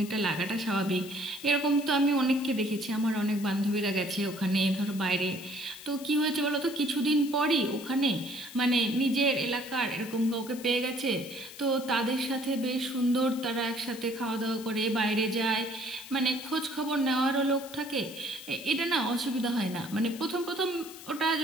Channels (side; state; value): left; noise; hiss, 16 dB below the sound